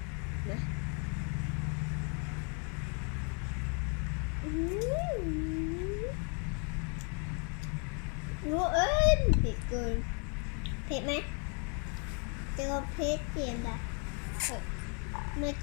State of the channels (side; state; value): right; quieter; 37.8 dB